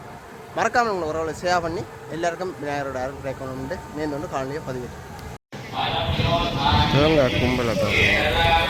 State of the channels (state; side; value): identical; both; correlation 1.00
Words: மறக்காமல் உங்களை உறவுகளை சேவ் பண்ணி எல்லாருக்கும் விநாயகரோட அருள் கிடைக்கணும்னு நேர்ந்து காலனியை பதிவிட்டேன். கும்பலை